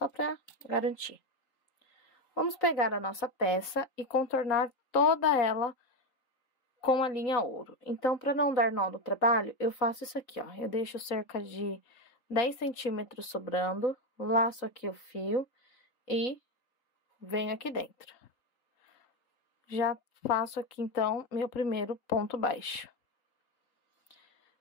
pra garantir. Vamos pegar a nossa peça e contornar toda ela com a linha ouro. Então, para não dar nó no trabalho, eu faço isso aqui, ó. Eu deixo cerca de 10 centímetros sobrando, laço aqui o fio e venho aqui dentro. Já faço aqui, então, meu primeiro ponto baixo.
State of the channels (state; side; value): late; right; 3.8 ms